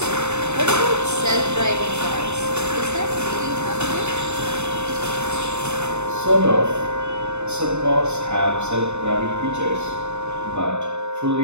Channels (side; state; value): left; late; 0.82 ms